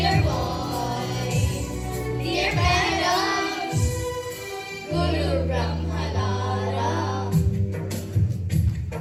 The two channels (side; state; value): both; identical; correlation 1.00